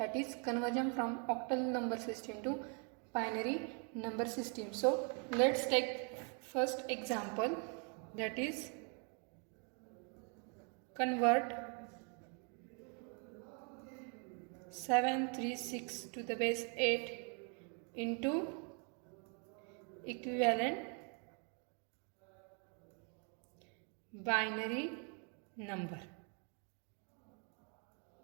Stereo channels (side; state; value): left; quieter; 37.8 dB